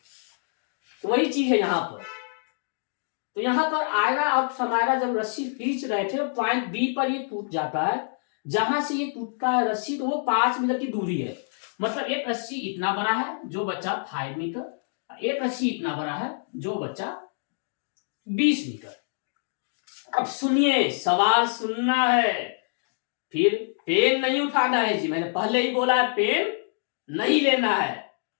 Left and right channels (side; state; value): right; silent; digital silence